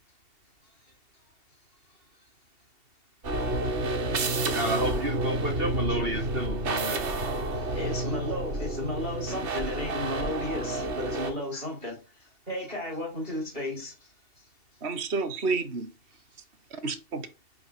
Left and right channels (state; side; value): late; left; 2.7 ms